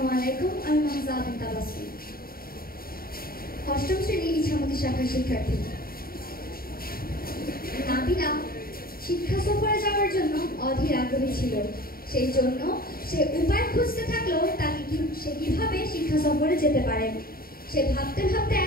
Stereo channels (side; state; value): right; late; 0.43 ms